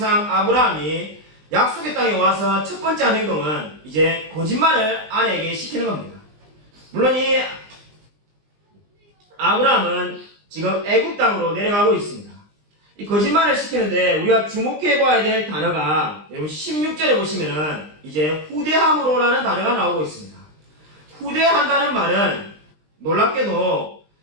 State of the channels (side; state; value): left; late; 20 ms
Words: 아브라함이 약속의 땅에 와서 첫 번째 한 행동은 이제 거짓말을 아내에게 시키는 겁니다. 물론 이 아브라함은 지금 애굽 땅으로 내려가고 있습니다. 이 거짓말을 시키는데 우리가 주목해 봐야 될 단어가 여러분 16절에 보시면은 이제 후대함으로라는 단어가 나오고 있습니다. 후대한다는 말은 놀랍게도